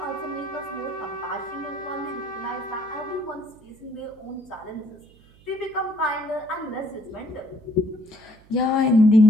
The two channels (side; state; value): right; noise; hum, 26 dB below the sound